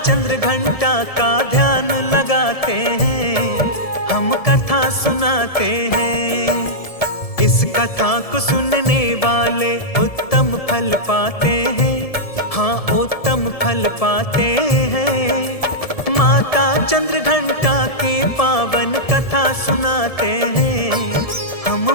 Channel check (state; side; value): late; right; 1.7 ms